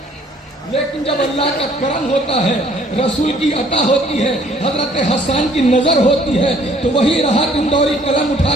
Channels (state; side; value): normal; both; correlation 0.60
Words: लेकिन जब अल्लाह का करम होता है, रसूल की अता होती है, हजरत हसन की नजर होती है, तो वही राहत इंदौरी कलम